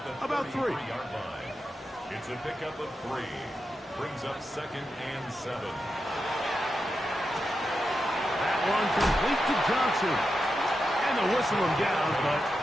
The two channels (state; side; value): normal; both; correlation 0.88